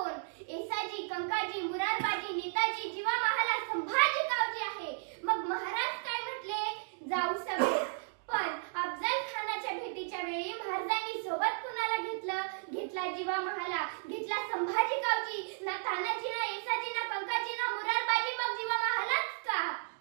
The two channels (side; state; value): left; silent; digital silence